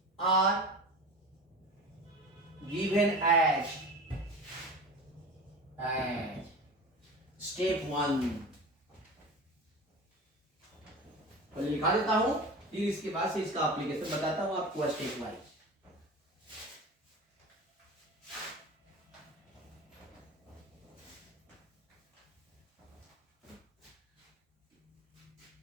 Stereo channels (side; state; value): both; normal; correlation 0.33